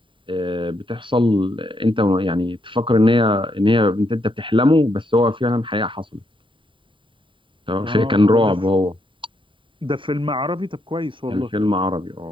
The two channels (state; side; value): late; left; 0.25 ms